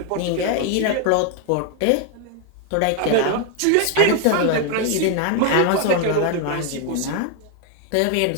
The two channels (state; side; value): different; both; correlation 0.01